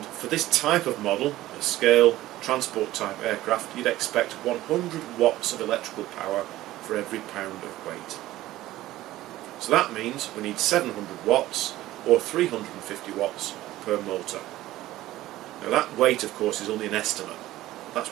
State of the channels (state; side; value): quieter; left; 15.7 dB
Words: for this type of model, a scale transport type aircraft, you'd expect 100 watts of electrical power for every pound of weight. So that means we need 700 watts or 350 watts per motor. Now that weight, of course, is only an estimate.